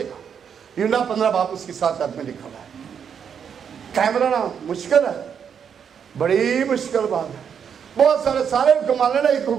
यूहन्ना 15 बाब उसकी 7 आयत में लिखा हुआ है। कायम रहना मुश्किल है, बड़ी मुश्किल बात है। बहुत सारे हुक्म मान लेना, एक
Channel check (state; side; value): quieter; left; 7.5 dB